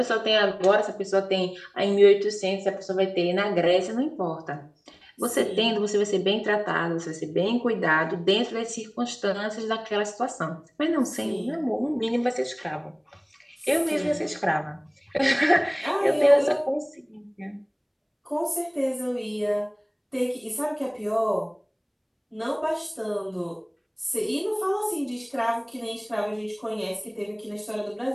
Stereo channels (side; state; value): both; identical; correlation 1.00